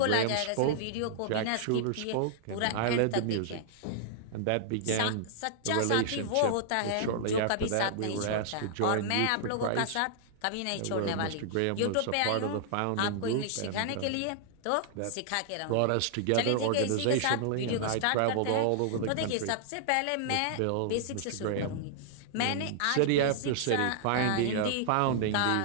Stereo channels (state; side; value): different; both; correlation -0.01